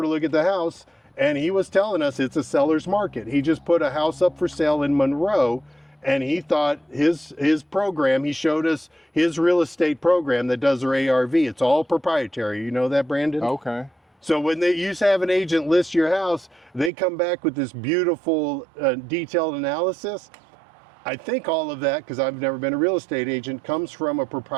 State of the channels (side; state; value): left; drops out; at 16.9 s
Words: to look at the house, and he was telling us it's a seller's market. He just put a house up for sale in Monroe, and he thought his program, he showed us his real estate program that does their ARV. It's all proprietary. You know that, Brandon? Okay. So when they used to have an agent list your house, they come back with this beautiful detailed analysis. I think all of that, because I've never been a real estate agent, comes from a